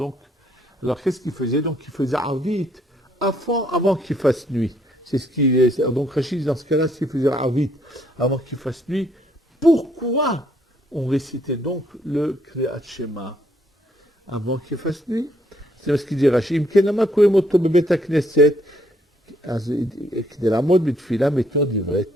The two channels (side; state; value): both; normal; correlation 0.69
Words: alors qu'est-ce qu'ils faisaient? Donc, ils faisaient arvit avant qu'il fasse nuit. C'est ce qui est. Donc Rachid, dans ce cas-là, s'il faisait Arvit avant qu'il fasse nuit, pourquoi on récitait donc le Kriyat Shema avant qu'il fasse nuit? C'est ce qu'il dit Rachid.